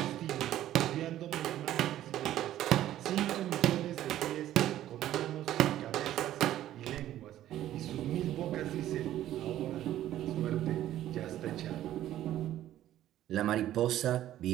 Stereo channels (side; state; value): left; quieter; 12.9 dB